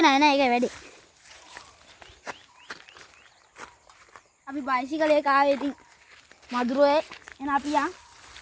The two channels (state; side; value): identical; both; correlation 1.00